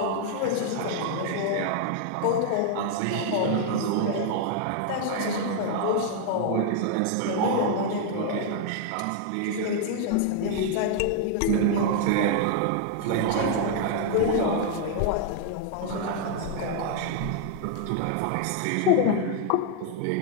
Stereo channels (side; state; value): both; different; correlation 0.00